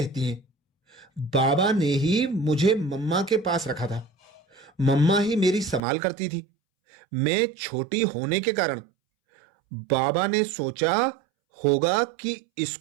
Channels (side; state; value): left; drops out; at 5.8 s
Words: हैं, बाबा ने ही मुझे मम्मा के पास रखा था। मम्मा ही मेरी संभाल करती थी। मैं छोटी होने के कारण बाबा ने सोचा होगा कि